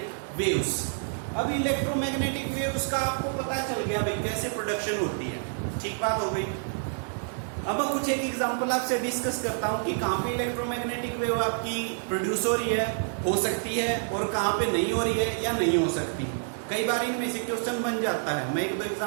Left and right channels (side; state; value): left; silent; digital silence